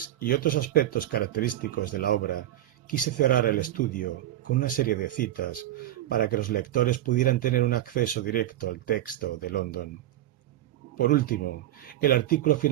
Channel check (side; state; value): left; quieter; 13.2 dB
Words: y otros aspectos característicos de la obra, quise cerrar el estudio con una serie de citas para que los lectores pudieran tener un acceso directo al texto de London. Por último, el artículo